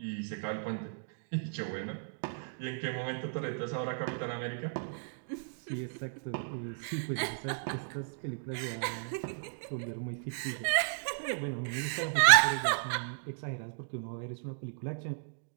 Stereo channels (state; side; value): silent; left; digital silence